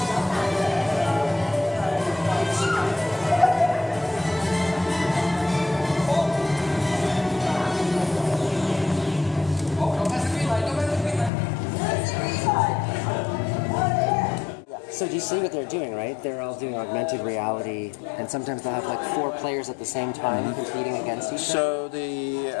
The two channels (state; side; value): drops out; right; at 11.3 s